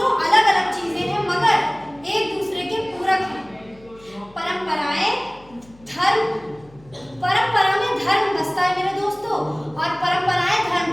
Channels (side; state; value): left; noise; hum, 26 dB below the sound